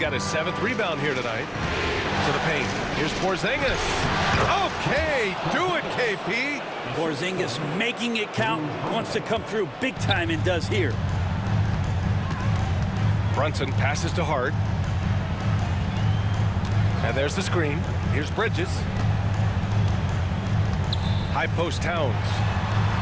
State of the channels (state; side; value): identical; both; correlation 1.00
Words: his 7th rebound here tonight. To the paint. Here's Porzingis. Okay, do it, KP. Porzingis making it count. Wants to come through big time and does here. Brunson passes to Hart. And there's the screen. Here's Bridges. High post Towns.